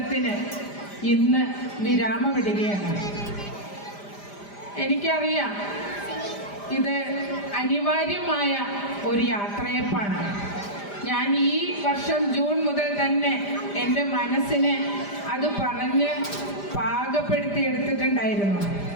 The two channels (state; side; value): late; right; 5.0 ms